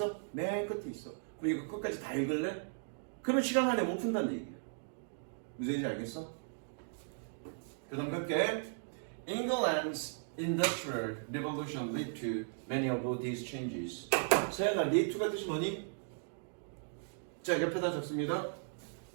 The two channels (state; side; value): silent; left; digital silence